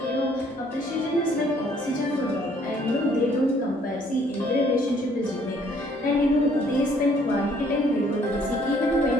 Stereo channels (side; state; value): both; normal; correlation 0.62